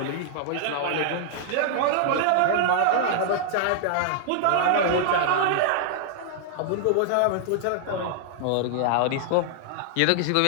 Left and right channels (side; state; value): both; different; correlation -0.01